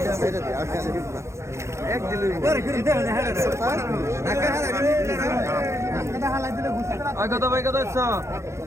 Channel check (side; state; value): left; late; 0.14 ms